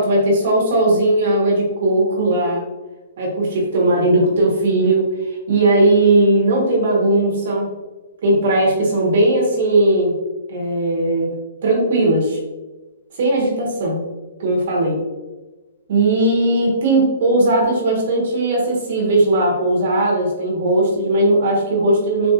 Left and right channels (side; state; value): both; inverted; correlation -0.55